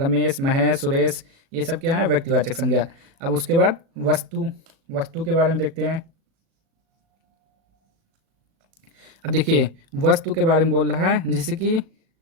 महेश, सुरेश, ये सब क्या है व्यक्तिवाचक संज्ञा। अब उसके बाद वस्तु के बारे में देखते हैं। अब देखिए वस्तु के बारे में बोल रहा है, जैसे कि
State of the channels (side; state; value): left; late; 37 ms